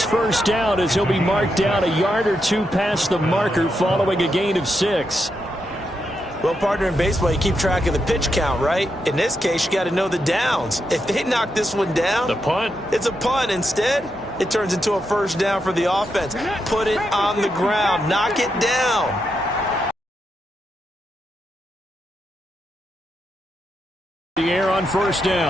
first down as he'll be marked down a yard or 2 past the marker following a gain of 6. Well, partner, in baseball, you keep track of the pitch count, right? In this case, you got to know the downs. If they knock this one down, the punt, it's a punt. Instead, it turns into a first down for the offense. Put it on the ground. Knock it down. The air on first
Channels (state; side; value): normal; both; correlation 0.84